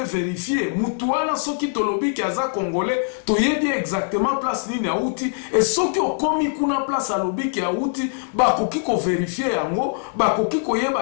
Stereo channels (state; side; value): silent; right; 63 dB below the other